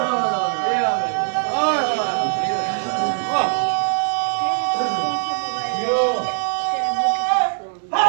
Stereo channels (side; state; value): left; silent; digital silence